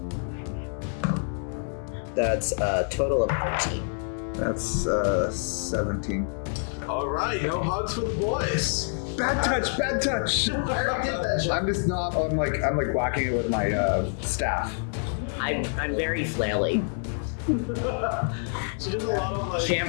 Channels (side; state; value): right; silent; 59 dB below the other